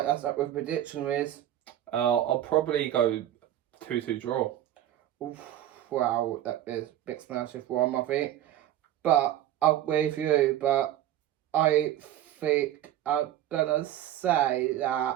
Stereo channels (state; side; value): quieter; left; 12.2 dB